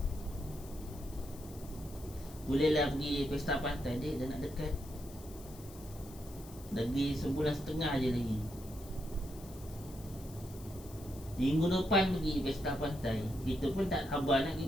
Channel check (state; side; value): noise; left; hiss, 19 dB below the sound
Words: Bolehlah pergi pesta pantai dia dah nak dekat. Lagi sebulan setengah je lagi. Minggu depan pergi pesta pantai. Kita pun tak sabar nak